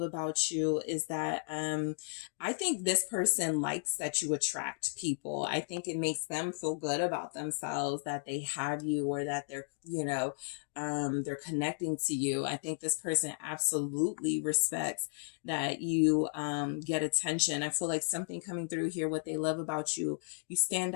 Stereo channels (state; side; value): silent; right; digital silence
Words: you is that I think this person likes that you attract people. I think it makes them feel good about themselves that they have you or that they're, they're connecting to you. I think this person absolutely respects that you get attention. I feel like something coming through here, what they love about you, you stand